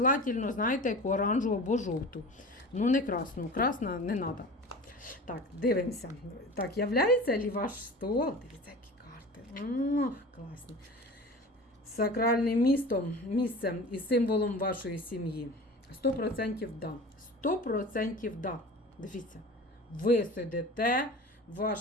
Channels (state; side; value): normal; both; correlation 0.37